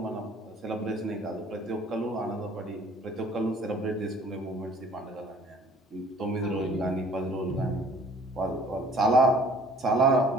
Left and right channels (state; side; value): normal; both; correlation 0.54